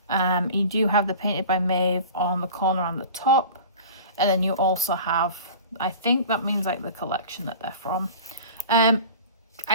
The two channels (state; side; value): inverted; both; correlation -0.39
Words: You do have the painted by Maeve on the corner on the top, and then you also have I think that means like the collection that they're from.